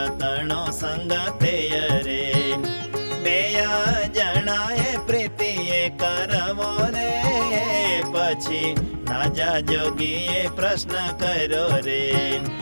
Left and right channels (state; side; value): inverted; both; correlation -1.00